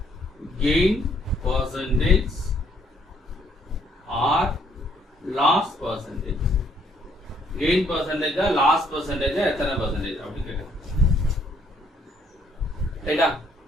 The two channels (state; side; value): normal; both; correlation 0.67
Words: Gain percentage or loss percentage. Gain percentage or loss percentage எத்தனை percentage அப்படி கேட்குறேன். ரைட்டா?